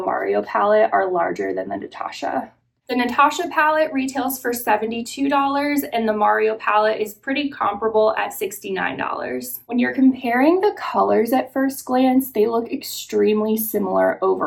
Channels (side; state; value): both; identical; correlation 1.00